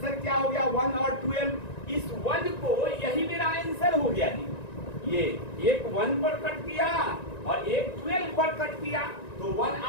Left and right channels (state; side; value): late; right; 1.9 ms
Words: क्या हो गया, 1 और 12। इस 1 को, यही मेरा आंसर हो गया जी। ये एक 1 पर कट किया और एक 12 पर कट किया, तो 1